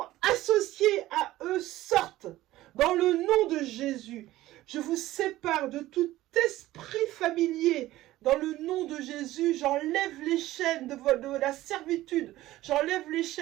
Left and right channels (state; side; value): quieter; left; 16.0 dB